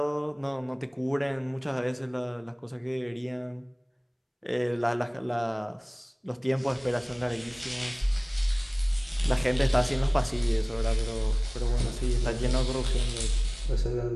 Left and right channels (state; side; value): identical; both; correlation 1.00